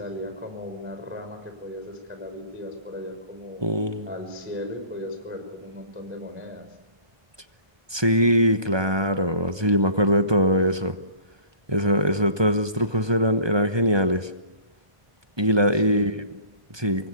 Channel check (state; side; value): late; left; 1.2 ms